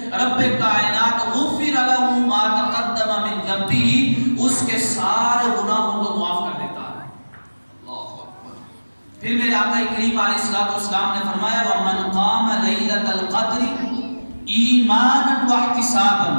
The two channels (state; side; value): inverted; both; correlation -1.00